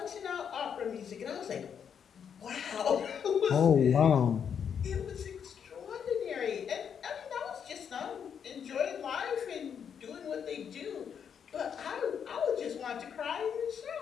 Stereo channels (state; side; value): quieter; right; 7.6 dB